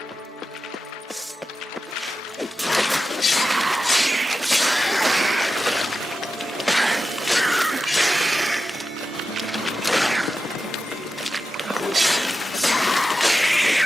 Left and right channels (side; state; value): both; normal; correlation 0.91